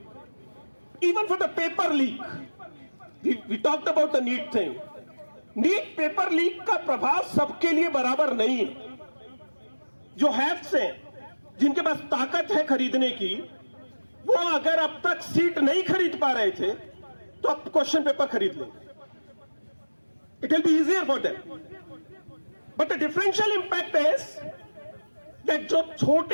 Even for the paper leak, we talked about the NEET thing. NEET paper leak का प्रभाव सबके लिए बराबर नहीं है। जो haves हैं, जिनके पास ताकत है खरीदने की, वो अगर अब तक सीट नहीं खरीद पा रहे थे तो अब क्वेश्चन पेपर खरीद लेंगे। It will be easier for them. But the differential impact is that जो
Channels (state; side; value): inverted; both; correlation -1.00